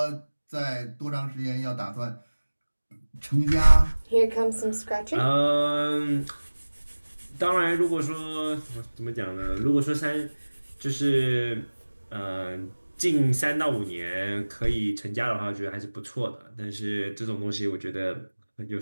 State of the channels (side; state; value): both; inverted; correlation -1.00